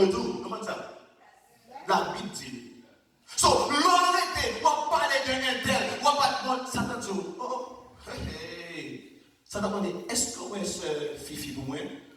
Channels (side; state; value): both; identical; correlation 1.00